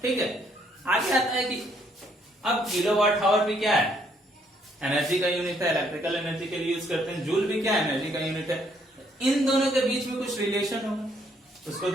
ठीक है, आगे आता है कि अब किलोवाट आवर भी क्या है, एनर्जी का यूनिट है, इलेक्ट्रिकल एनर्जी के लिए यूज करते हैं। जूल भी क्या है, एनर्जी का यूनिट है। इन दोनों के बीच में कुछ रिलेशन होगा, उसको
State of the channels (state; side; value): normal; both; correlation 0.68